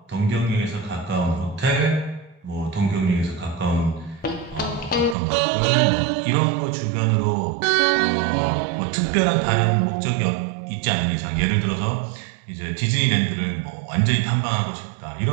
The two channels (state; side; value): drops out; left; at 5.2 s